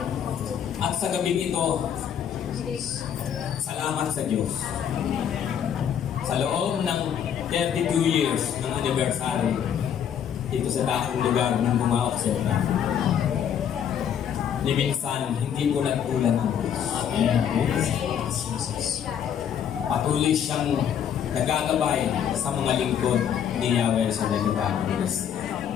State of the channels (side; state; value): right; quieter; 8.9 dB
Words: at sa gabing ito, salamat sa Diyos. Sa loob ng 32 years ng anniversary dito sa dakong lugar ng mga Oksona, ni minsan hindi ko nagkulan ang Diyos. Patuloy siyang nagagabay sa mga lingkod ni Yahweh sa dahil.